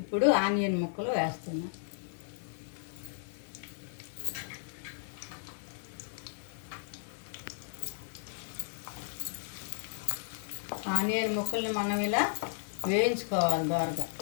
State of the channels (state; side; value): silent; right; digital silence